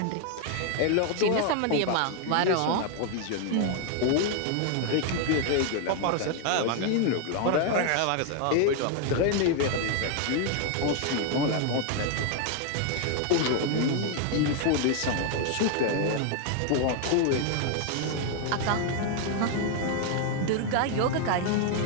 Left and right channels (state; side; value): different; both; correlation 0.00